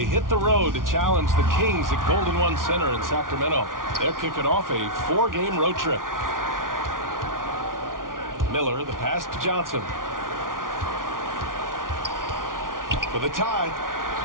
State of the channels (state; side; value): late; left; 0.90 ms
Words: hit the road to challenge the Kings at Golden One Center in Sacramento. They're kicking off a 4-game road trip. Miller, the pass to Johnson. For the tie.